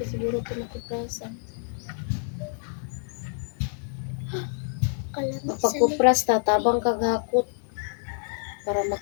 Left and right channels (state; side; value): silent; right; 60 dB below the other